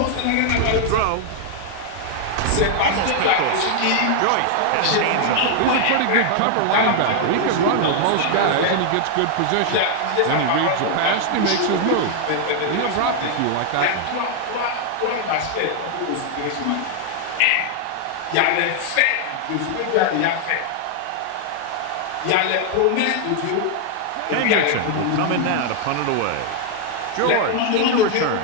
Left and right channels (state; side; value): different; both; correlation 0.00